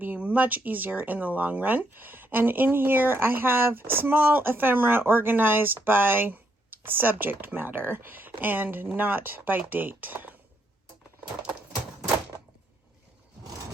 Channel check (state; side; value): normal; both; correlation 0.75